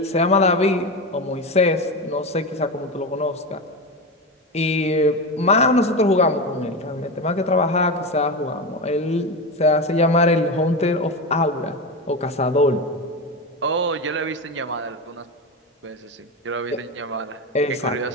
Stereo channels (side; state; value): both; normal; correlation 0.19